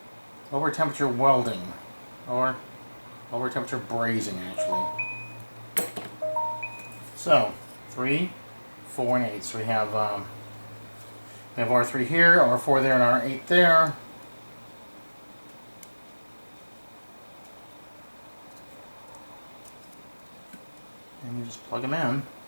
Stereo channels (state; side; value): inverted; both; correlation -1.00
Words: lower temperature welding. Or lower temperature brazing, actually. So 3, 4, and 8. So we have R3 here, R4 there, and R8 there. And you just plug them in.